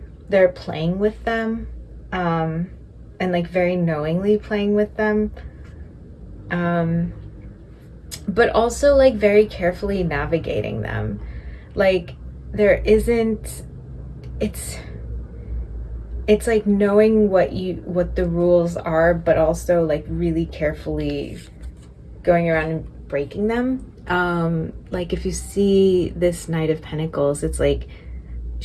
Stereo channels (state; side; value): identical; both; correlation 1.00